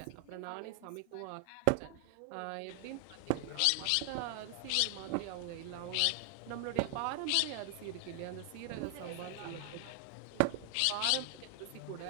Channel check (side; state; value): both; different; correlation 0.00